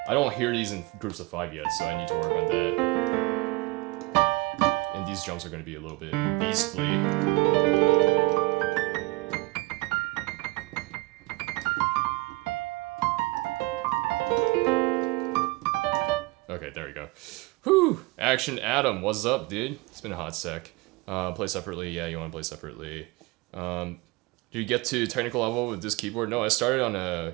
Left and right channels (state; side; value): quieter; left; 23.2 dB